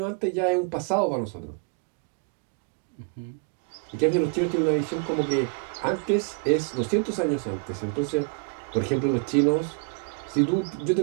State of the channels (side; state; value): left; quieter; 35.0 dB